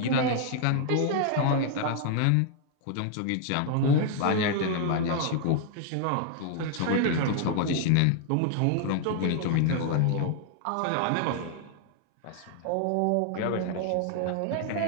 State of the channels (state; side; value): different; both; correlation 0.00